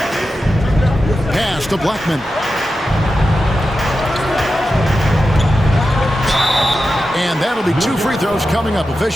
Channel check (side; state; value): both; normal; correlation 0.91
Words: Pass to Blackman. And that'll be 2 free throws coming up.